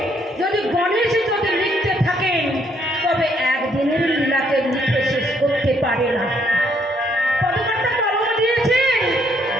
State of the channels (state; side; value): normal; both; correlation 0.69